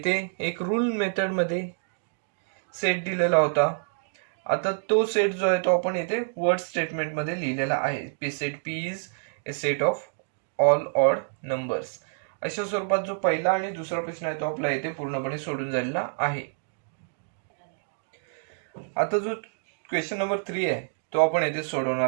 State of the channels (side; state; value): left; silent; digital silence